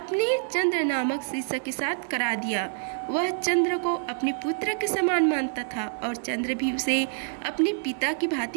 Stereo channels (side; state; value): left; silent; digital silence